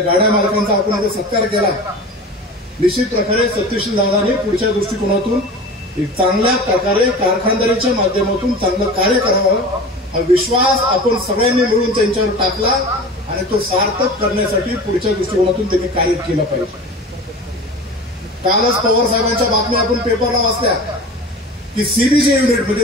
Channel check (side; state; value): both; normal; correlation 0.35